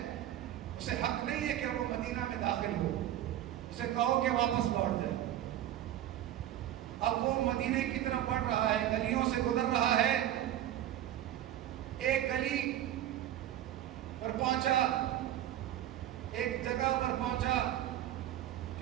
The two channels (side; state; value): left; quieter; 12.3 dB